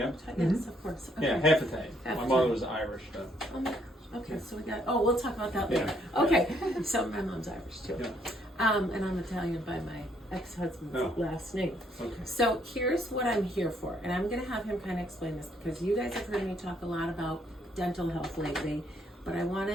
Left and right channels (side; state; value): both; normal; correlation 0.70